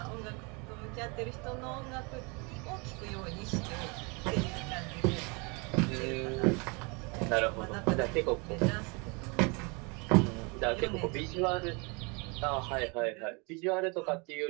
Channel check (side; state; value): left; quieter; 30.7 dB